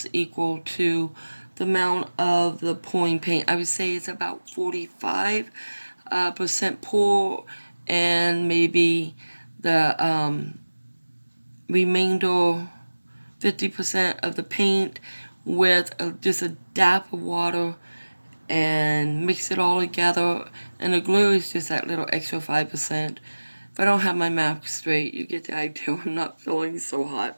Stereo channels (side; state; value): both; inverted; correlation -1.00